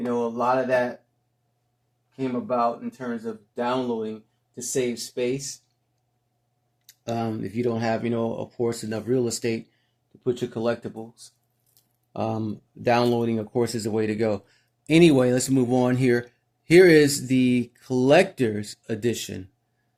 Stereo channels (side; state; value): both; identical; correlation 1.00